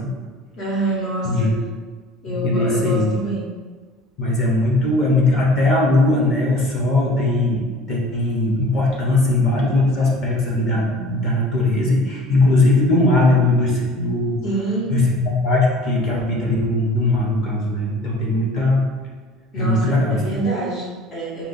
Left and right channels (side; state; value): both; normal; correlation 0.48